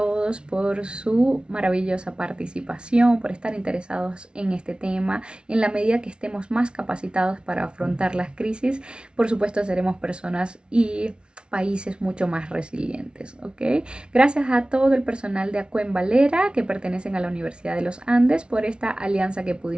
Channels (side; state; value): left; late; 0.056 ms